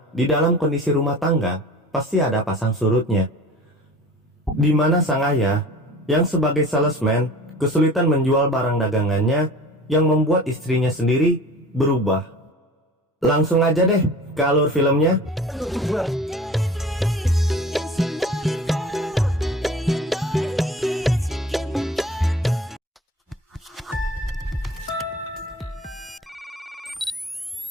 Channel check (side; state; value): both; normal; correlation 0.41